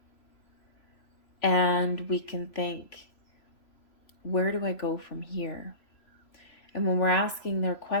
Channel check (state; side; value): late; right; 3.0 ms